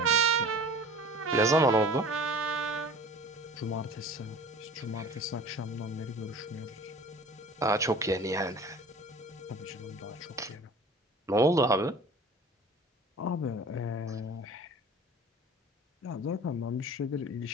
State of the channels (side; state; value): both; normal; correlation 0.42